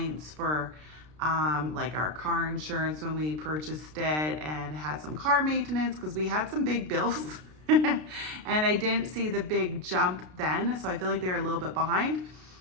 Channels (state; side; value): late; left; 33 ms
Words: for like our car insurance when we purchased it, and had some car maintenance because we had some big bills. And I didn't see the big jump then, so I feel like they're a little bit behind,